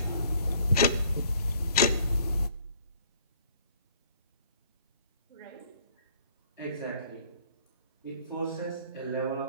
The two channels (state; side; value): inverted; both; correlation -0.59